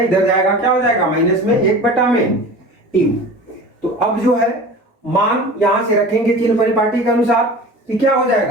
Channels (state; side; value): normal; both; correlation 0.37